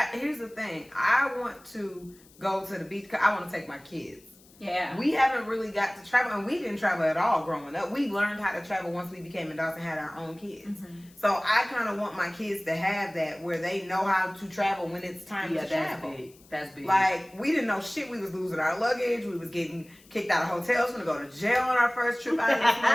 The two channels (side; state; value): left; noise; hiss, 27 dB below the sound